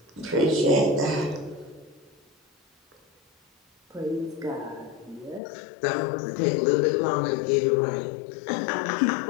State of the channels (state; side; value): drops out; right; at 5.4 s